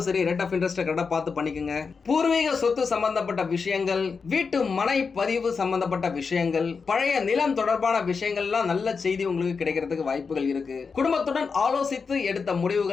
சரி, ரேட் ஆஃப் இன்ட்ரெஸ்ட் கரெக்டா பார்த்து பண்ணிக்கோங்க. பூர்வீக சொத்து சம்பந்தப்பட்ட விஷயங்கள், வீட்டு மனை பதிவு சம்பந்தப்பட்ட விஷயங்கள், பழைய நிலம் தொடர்பான விஷயங்கள்லாம் நல்ல செய்தி உங்களுக்கு கிடைக்கிறதுக்கு வாய்ப்புகள் இருக்கு. குடும்பத்துடன் ஆலோசித்து எடுத்த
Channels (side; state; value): right; quieter; 5.2 dB